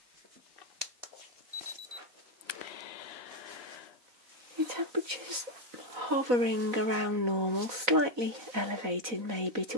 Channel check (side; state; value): left; late; 3.9 ms